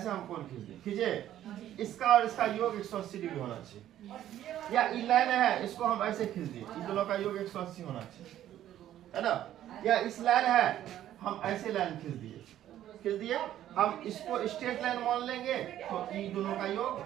हम कोण खींच दिए, खींचे। इसका और इसका योग 180 डिग्री होना चाहिए। या ये लाइन है, इसको हम ऐसे खींच दिए, इन दोनों का योग 180 होना चाहिए, है ना। या इस लाइन है, हम ऐसे लाइन खींच दिए, हम इसको स्ट्रेट लाइन मान लेंगे तो इन दोनों का योग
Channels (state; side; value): quieter; left; 12.1 dB